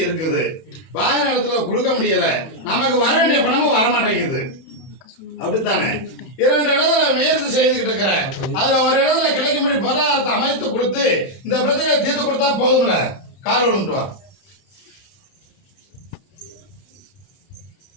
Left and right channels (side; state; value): right; late; 31 ms